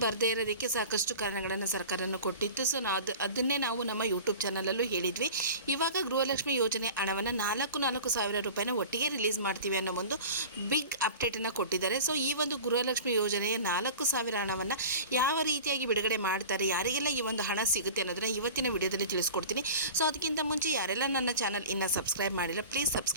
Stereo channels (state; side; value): inverted; both; correlation -0.37